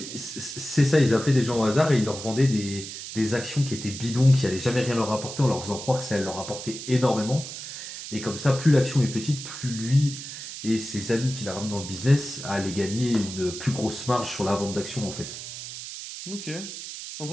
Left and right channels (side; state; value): right; noise; hiss, 9 dB below the sound